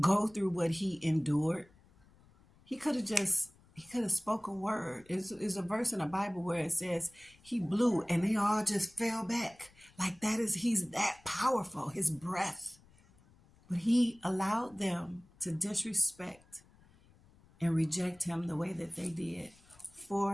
go through what he endured. He could have spoke a word. There's a verse in the Bible where it says he blew and they all just fell back. Like he's that powerful, his breath. But he allowed them to disrespect and reject him the way that they did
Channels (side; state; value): left; noise; rumble, 28 dB below the sound